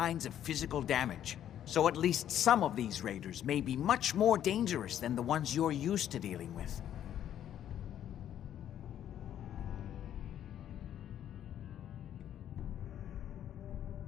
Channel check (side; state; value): right; quieter; 10.6 dB